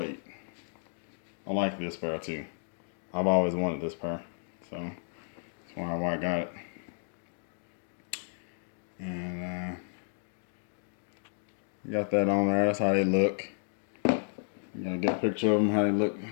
8. I like this pair too. I've always wanted this pair, so that's why I got it. And got that on there. That's how they look. You gotta get a picture of them, how they look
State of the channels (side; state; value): right; silent; digital silence